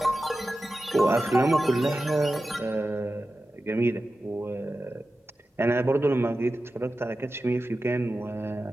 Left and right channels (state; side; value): normal; both; correlation 0.93